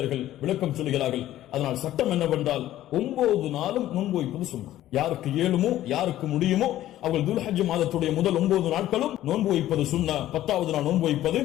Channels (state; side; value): quieter; right; 13.7 dB